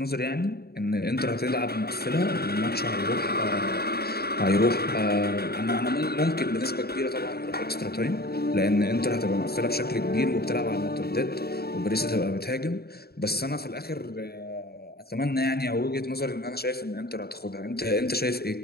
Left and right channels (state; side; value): late; right; 0.46 ms